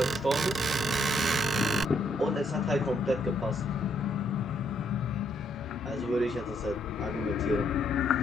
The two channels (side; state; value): both; normal; correlation 0.72